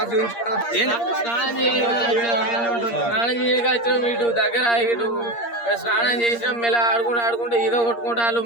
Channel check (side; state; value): right; late; 8.6 ms